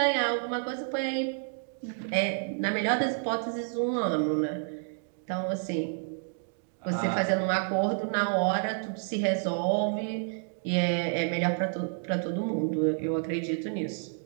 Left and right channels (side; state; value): left; silent; 58 dB below the other